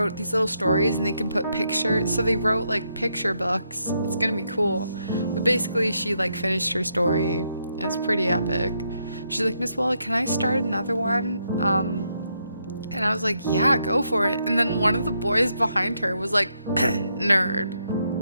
these little stories and they can put pictures. So they wrote like picture books. It's gonna be cool. But basically she like finished her story. It's pretty epic. She's like, Miss Wallach, can I start another one? And I was like, yeah, go for it. And then one of the boys behind her was like, nerd.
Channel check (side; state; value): both; inverted; correlation -0.78